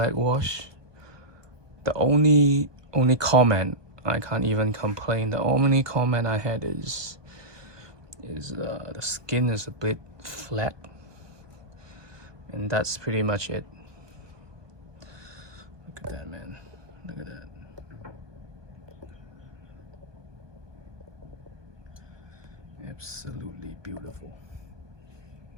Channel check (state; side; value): late; left; 1.2 ms